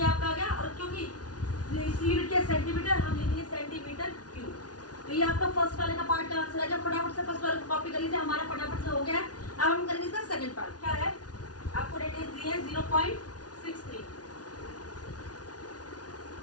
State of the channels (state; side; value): late; right; 0.69 ms